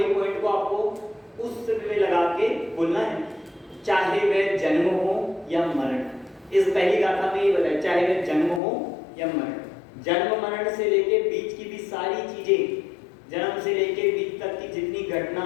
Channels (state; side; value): drops out; right; at 8.6 s